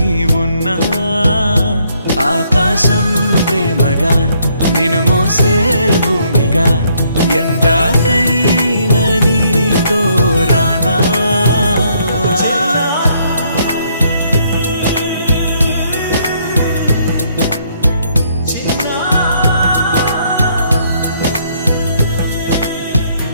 ఉన్నా ఆకాశం ప్రేమగా నిన్ను మోసే భూమిగా ఎందాకైనా నీతో రానా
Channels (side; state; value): both; inverted; correlation -0.69